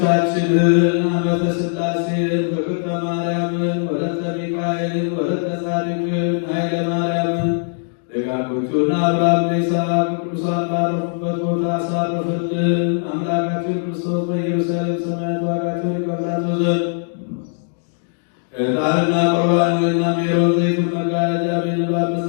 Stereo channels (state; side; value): silent; right; 66 dB below the other